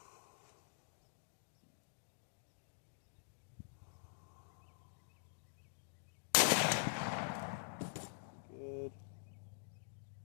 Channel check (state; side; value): silent; right; digital silence